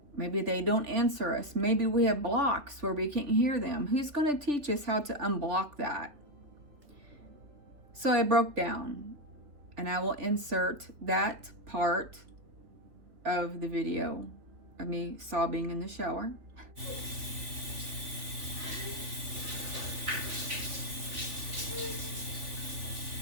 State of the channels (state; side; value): late; left; 3.4 ms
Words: Maybe they don't answer us. Maybe we have blocks where we can't hear them. Who's going to teach us how to unblock that? So I broke down, and I will insert that part of the video of me sobbing in the shower.